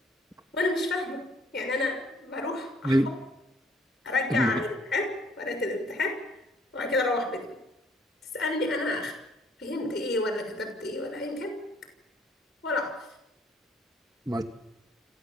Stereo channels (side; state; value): both; normal; correlation 0.62